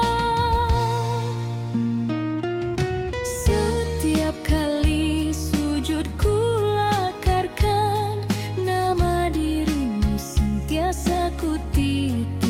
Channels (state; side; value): identical; both; correlation 1.00